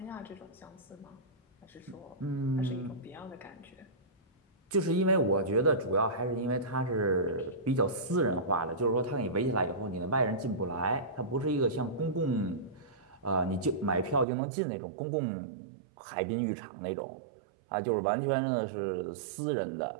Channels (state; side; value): drops out; left; at 14.2 s